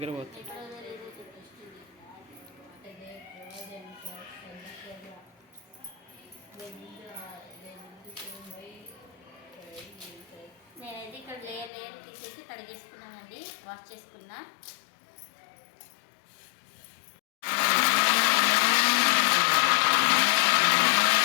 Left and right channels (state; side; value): drops out; right; at 11.7 s